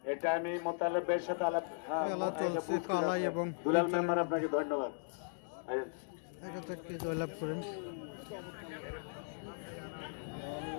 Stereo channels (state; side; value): silent; right; digital silence